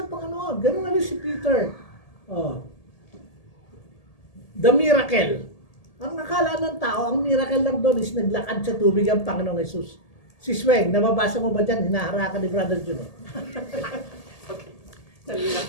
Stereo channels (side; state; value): right; late; 1.8 ms